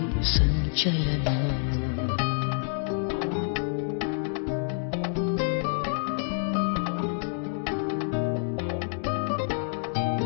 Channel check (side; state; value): right; silent; digital silence